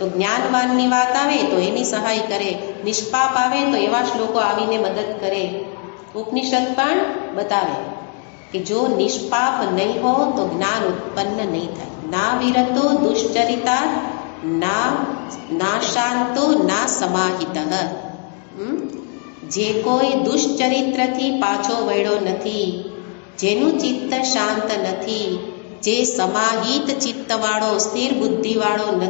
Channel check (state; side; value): quieter; right; 39.3 dB